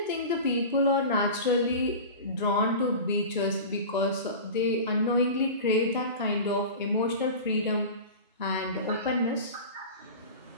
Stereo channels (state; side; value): inverted; both; correlation -0.32